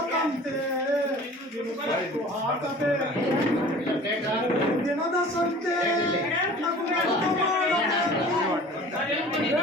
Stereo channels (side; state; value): both; normal; correlation 0.44